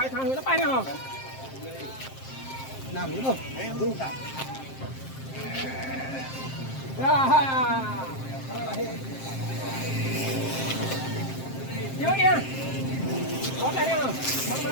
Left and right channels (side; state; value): right; late; 7.6 ms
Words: thay nó bay đi không? Nằm nữa không? Nhớ nha. Có đây không? Bắn